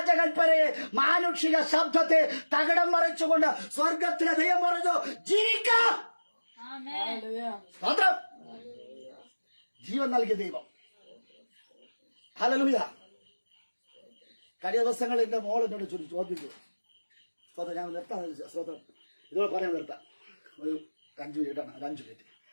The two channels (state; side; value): inverted; both; correlation -1.00